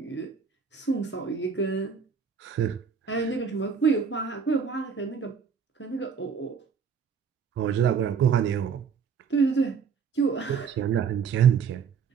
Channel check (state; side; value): quieter; left; 6.4 dB